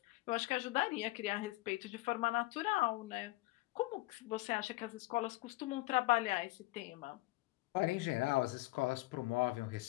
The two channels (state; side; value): quieter; right; 20.4 dB